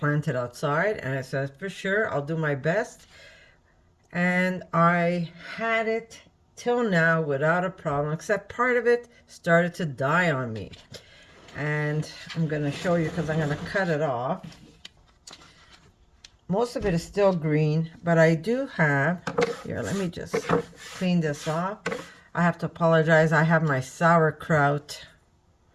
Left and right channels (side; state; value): both; identical; correlation 1.00